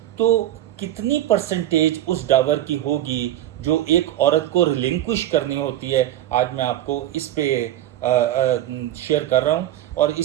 تو کتنی پرسنٹیج اس ڈاور کی ہوگی جو ایک عورت کو ریلنکوش کرنی ہوتی ہے، آج میں آپ کو اس پہ شیئر کر رہا ہوں۔ اور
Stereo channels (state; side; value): quieter; left; 13.0 dB